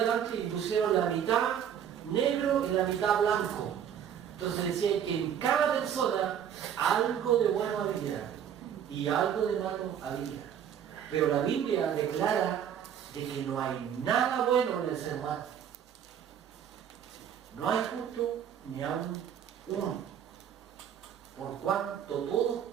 y pusieron la mitad negro y la mitad blanco. Entonces decían que en cada persona algo de bueno había y algo de malo había. Pero la Biblia declara de que no hay nada bueno en el ser humano. No hay justo ni aún uno. Por cuanto todos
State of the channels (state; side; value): quieter; left; 9.1 dB